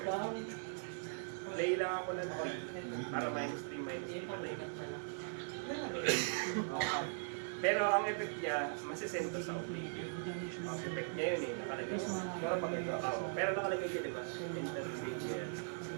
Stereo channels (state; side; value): silent; left; digital silence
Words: Play lang ako ng 3 para minus 3, minus 3 patay. Pero ang effect niya, masisento sa oblivion. Ang effect niya yun eh, nakalagay. Pero pag ito. Pero nakalagay siya, di ba? Enter stage yan.